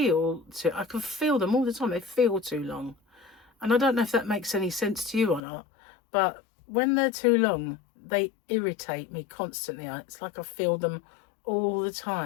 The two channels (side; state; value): right; drops out; at 5.4 s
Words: I can feel them all the time. They feel too long. And I don't know if that makes any sense to you or not, but when they're too long, they irritate me constantly. It's like I feel them all the